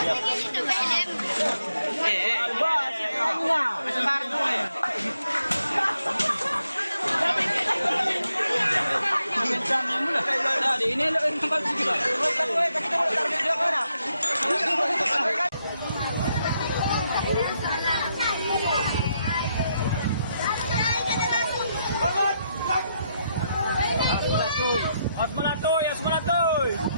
Nah, di ini lo kembali sedikit lah. Asmanatoy, Asmanatoy.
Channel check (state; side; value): inverted; both; correlation -0.79